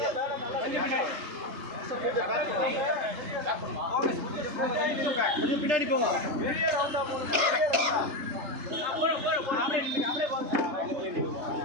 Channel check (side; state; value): left; late; 3.4 ms